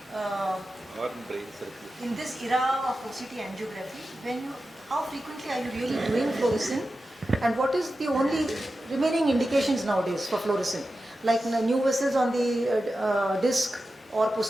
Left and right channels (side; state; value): both; normal; correlation 0.92